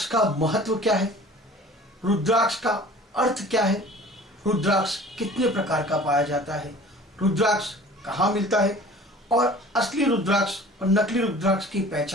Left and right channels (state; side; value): normal; both; correlation 0.45